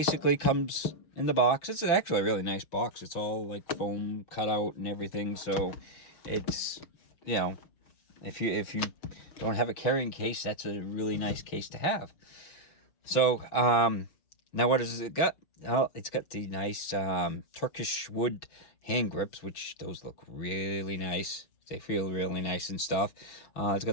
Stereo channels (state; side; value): late; right; 6.3 ms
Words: comes in the box. It's actually a really nice box. It's all like foam cut out and everything. So it's, if you don't have a carrying case, that's a really nice case to have. So now what does it got? Oh, it's got the nice Turkish wood hand grips, which those look really nice. They feel really nice and stuff. It's